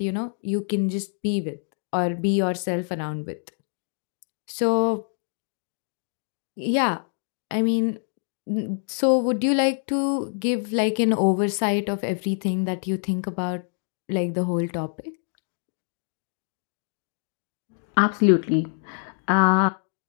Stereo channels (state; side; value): silent; right; digital silence